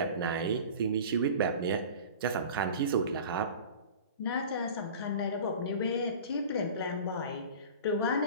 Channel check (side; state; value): both; inverted; correlation -0.37